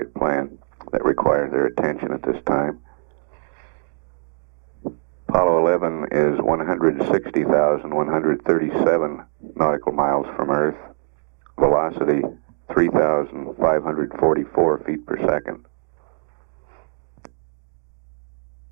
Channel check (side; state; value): left; silent; digital silence